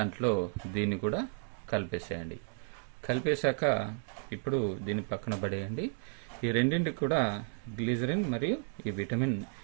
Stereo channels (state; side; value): silent; left; 56 dB below the other